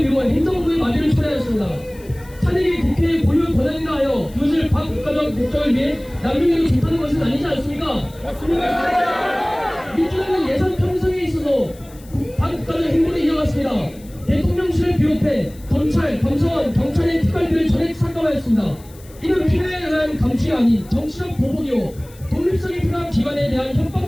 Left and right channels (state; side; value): noise; left; hiss, 24 dB below the sound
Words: 행정부의 마비를 초래하였습니다. 탄핵이 국회의 고유 권한이라 하여 그것을 반국가적 목적을 위해 남용해도 좋다는 것은 아니지 않습니까? 맞습니다. 민주당은 예산 편성에 있어서 반국가적 행보를 이어갔습니다. 대통령실을 비롯해 검찰, 감사원, 경찰의 특활비를 전액 삭감하였습니다. 이는 필요에 의한 감시가 아닌 정치적 보복이요 독립성이 필요한 기관에 대한